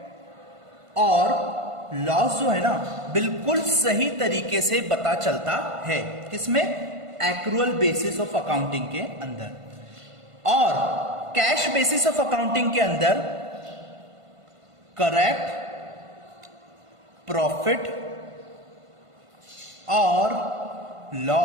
और लॉस जो है ना, बिल्कुल सही तरीके से पता चलता है। किसमें? एक्रूअल बेसिस ऑफ अकाउंटिंग के अंदर। और कैश बेसिस ऑफ अकाउंटिंग के अंदर करेक्ट प्रॉफिट और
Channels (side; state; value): left; late; 1.5 ms